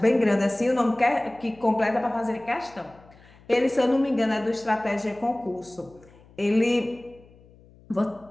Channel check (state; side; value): noise; left; hum, 26 dB below the sound